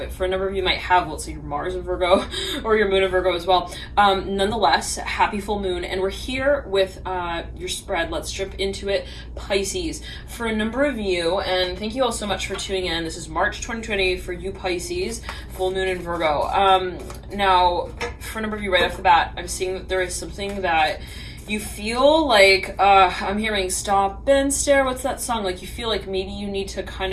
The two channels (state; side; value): identical; both; correlation 1.00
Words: for a number of you might have, let's say your Mars in Virgo or your moon in Virgo as well. Nonetheless, happy full moon. And we're here with your spread. Let's jump into it, Pisces. For a number of you, and thank you all so much for tuning in. This is March 2020 for you, Pisces. Full moon in Virgo. Now, for a number of you right off the bat, I'm seeing that there is something that you feel like, I'm hearing stop and stare. What's that song? Like you feel like maybe you need to kind